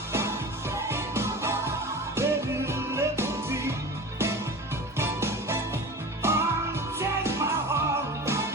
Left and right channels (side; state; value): both; normal; correlation 0.34